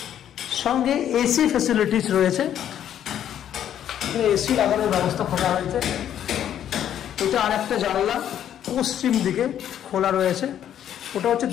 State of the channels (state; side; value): quieter; right; 10.3 dB